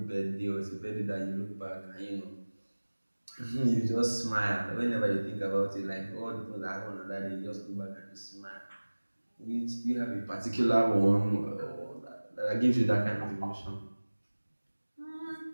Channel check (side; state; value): both; inverted; correlation -1.00